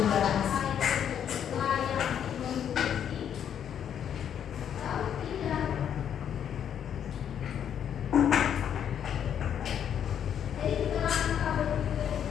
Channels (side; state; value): right; quieter; 9.0 dB